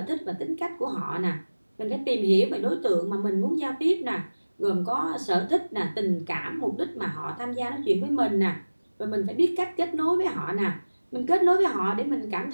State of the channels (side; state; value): both; inverted; correlation -1.00